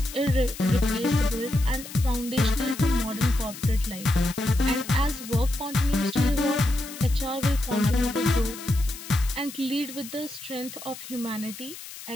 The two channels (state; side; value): noise; left; hiss, 13 dB below the sound